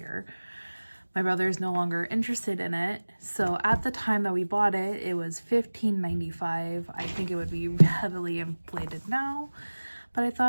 My brother is no longer interested in it. So at the time that we bought it, it was $15.95. I think it would be heavily inflated now, but I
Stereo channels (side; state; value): both; inverted; correlation -1.00